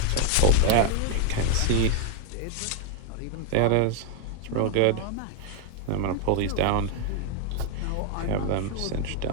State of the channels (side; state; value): both; different; correlation 0.00